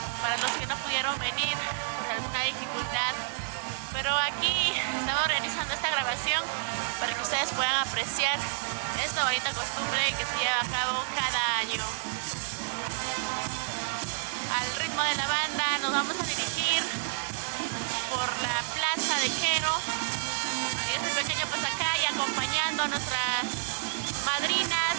para los que no pudieron venir por alguna dificultad. Pero aquí estamos realizando esta grabación para que ustedes puedan apreciar esta bonita costumbre que se lleva a cabo cada año. Al ritmo de la banda nos vamos a dirigir por la plaza de Quero, este pequeño pasacay, acompañando a nuestras madrinas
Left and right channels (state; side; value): silent; left; 58 dB below the other